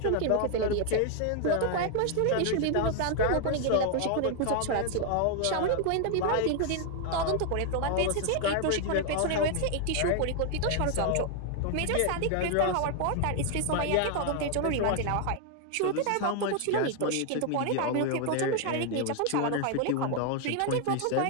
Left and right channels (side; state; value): both; different; correlation 0.00